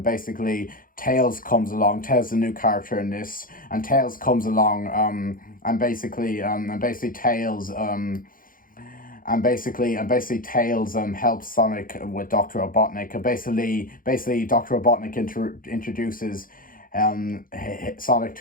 basically Tails comes along. Tails is a new character in this, and Tails comes along and basically Tails helps Sonic with Dr. Robotnik, and basically Dr. Robotnik introduces Sonic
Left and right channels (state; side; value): late; right; 0.40 ms